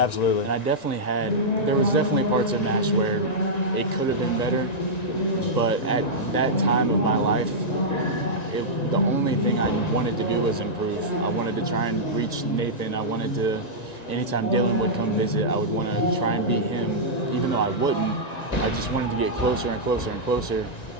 And there was definitely parts of MASH where it could have been better, but at that time of my life, the only thing I wanted to do was improve. I wanted to try and reach Nathan. I wanted to, anytime Dylan would come visit, I would want to try and beat him, even though I wouldn't. I just wanted to get closer and closer and closer,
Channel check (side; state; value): right; late; 1.9 ms